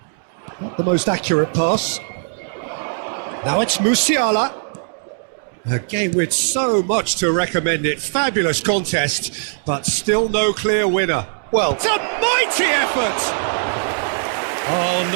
Not the most accurate pass. Now it's Musiala. A game with so much to recommend it. Fabulous contest, but still no clear winner. Well, It's a mighty effort! Oh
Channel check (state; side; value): silent; left; digital silence